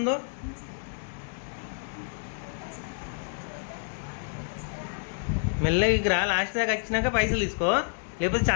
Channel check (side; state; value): right; silent; 59 dB below the other